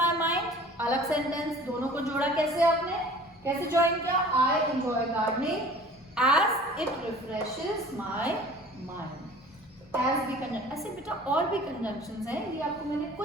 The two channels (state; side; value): normal; both; correlation 0.46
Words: mind. अलग सेंटेंस. दोनों को जोड़ा कैसे आपने? कैसे ज्वाइन किया? I enjoy gardening as it refreshes my mind. As भी कंजंक्शन. ऐसे बेटा और भी कंजंक्शंस हैं. ये आपको मैंने